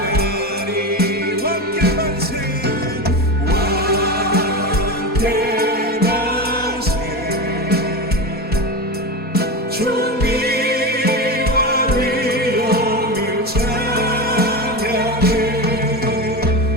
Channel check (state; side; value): late; right; 4.2 ms